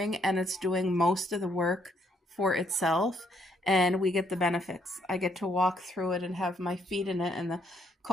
and it's doing most of the work for itself, and we get the benefits. I get to walk through it and have my feet in it, and the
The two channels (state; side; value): normal; both; correlation 0.71